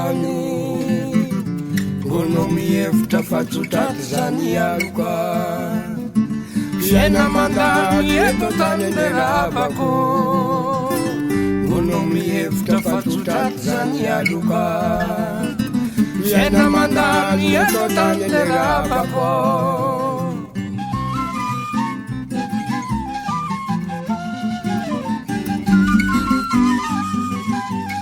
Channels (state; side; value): identical; both; correlation 1.00